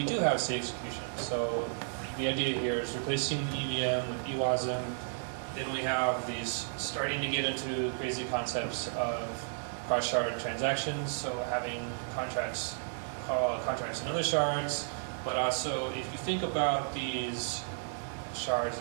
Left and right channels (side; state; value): left; silent; digital silence